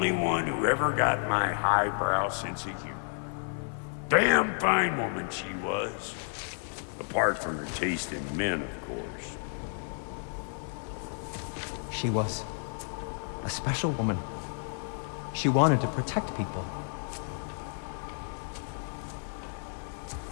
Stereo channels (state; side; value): silent; right; 57 dB below the other